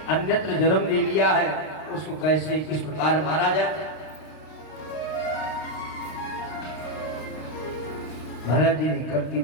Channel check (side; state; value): right; late; 32 ms